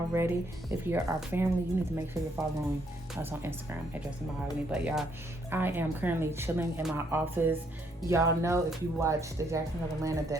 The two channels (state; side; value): normal; both; correlation 0.71